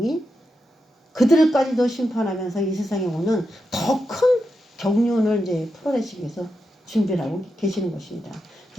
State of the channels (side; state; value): both; normal; correlation 0.87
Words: 그들까지도 심판하면서 이 세상에 오는 더 큰 경륜을 이제 풀어내시기 위해서 준비를 하고 계시는 것입니다.